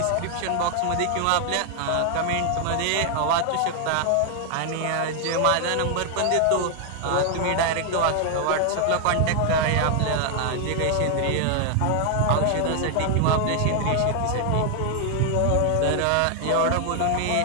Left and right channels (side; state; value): both; different; correlation 0.00